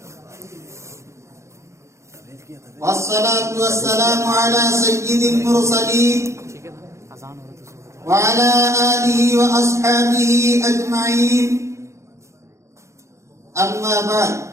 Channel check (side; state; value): left; late; 0.14 ms